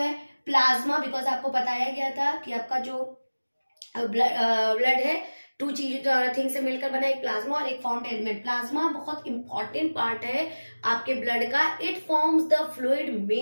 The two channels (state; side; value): inverted; both; correlation -1.00